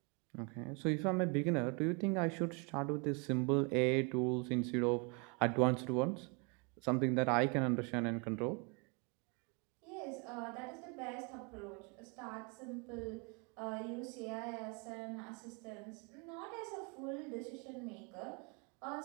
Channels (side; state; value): left; quieter; 33.1 dB